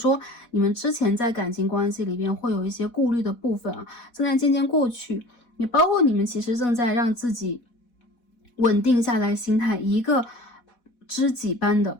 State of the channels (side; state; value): right; late; 4.1 ms